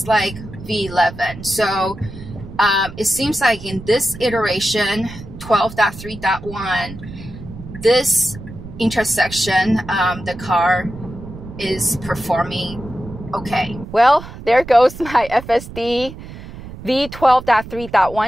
like V11. So it seems like in this iteration, 12.3.1, this intersection, the car is performing okay. Well, there goes my FSD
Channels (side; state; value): right; noise; rumble, 14 dB below the sound